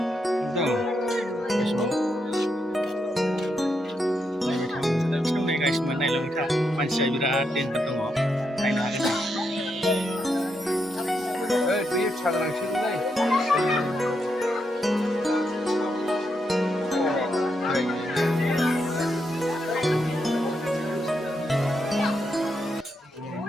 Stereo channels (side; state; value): both; normal; correlation 0.81